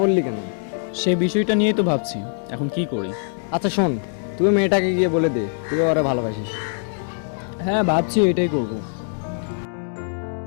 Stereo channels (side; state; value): right; silent; digital silence